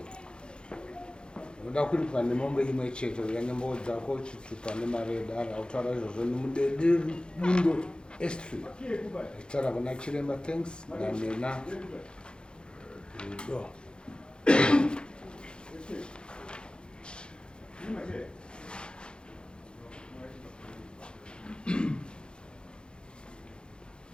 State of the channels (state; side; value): late; right; 0.051 ms